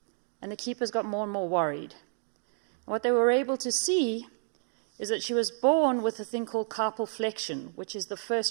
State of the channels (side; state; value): left; silent; 58 dB below the other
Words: and the keepers got more and more worried. And what they were able to see is that she was born with a thing called carpal flexion, which is the